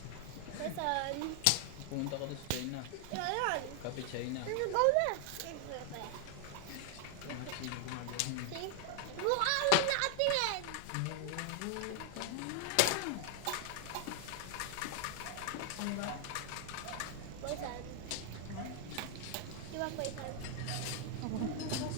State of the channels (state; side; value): different; both; correlation 0.00